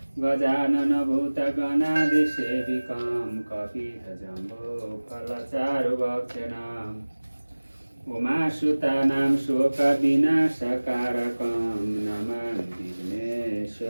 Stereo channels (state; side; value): inverted; both; correlation -1.00